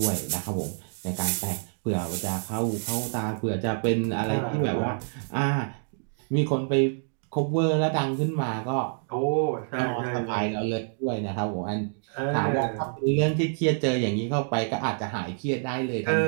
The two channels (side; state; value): left; silent; digital silence